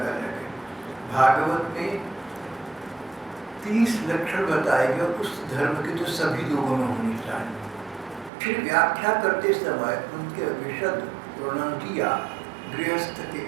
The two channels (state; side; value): drops out; left; at 8.3 s